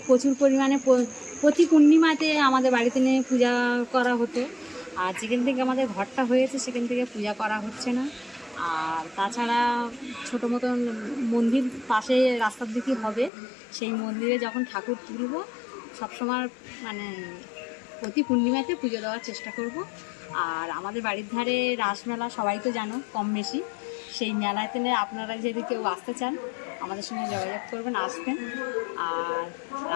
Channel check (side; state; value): right; drops out; at 13.3 s